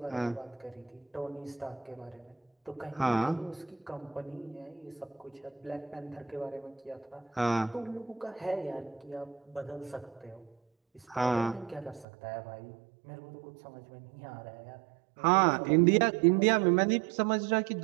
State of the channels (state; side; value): drops out; left; at 12.1 s